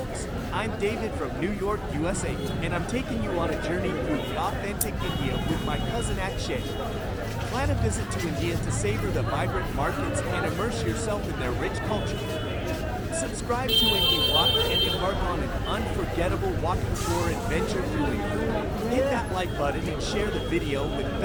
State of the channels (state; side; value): identical; both; correlation 1.00